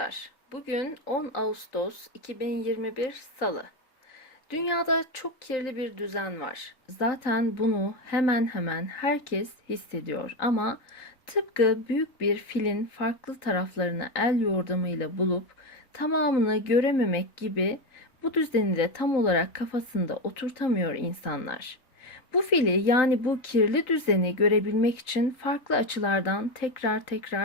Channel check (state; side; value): late; right; 3.9 ms